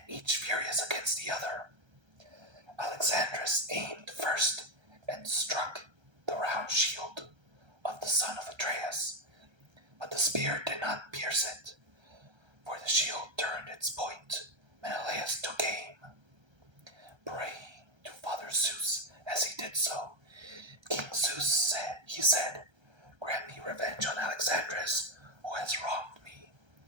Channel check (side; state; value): left; late; 1.3 ms